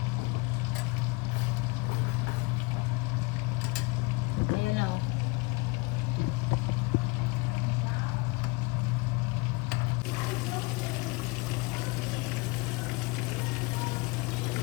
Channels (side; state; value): right; quieter; 25.2 dB